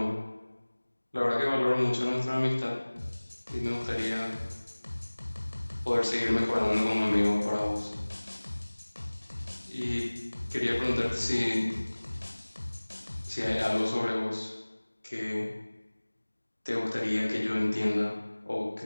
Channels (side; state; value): both; inverted; correlation -1.00